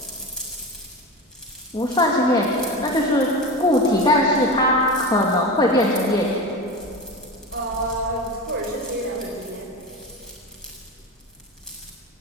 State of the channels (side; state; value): both; normal; correlation 0.26